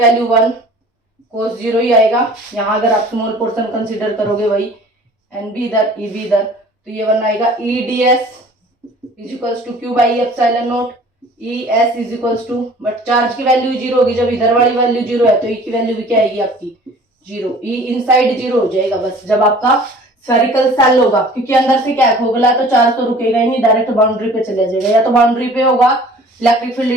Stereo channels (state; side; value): normal; both; correlation 0.48